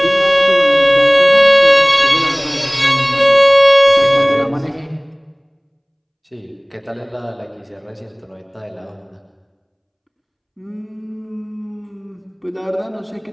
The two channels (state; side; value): identical; both; correlation 1.00